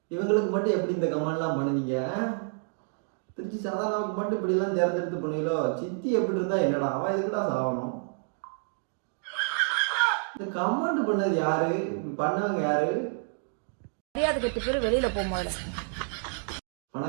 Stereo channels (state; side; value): silent; left; 58 dB below the other